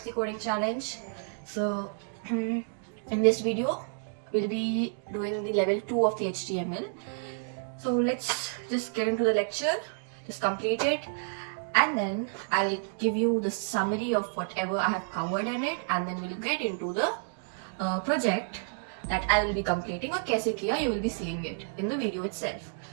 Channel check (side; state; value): left; silent; digital silence